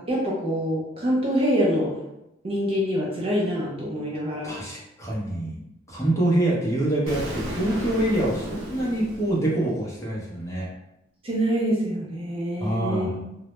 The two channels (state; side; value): normal; both; correlation 0.66